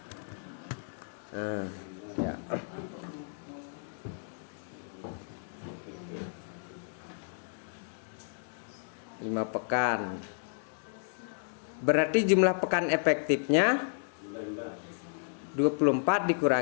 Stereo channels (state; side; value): silent; right; digital silence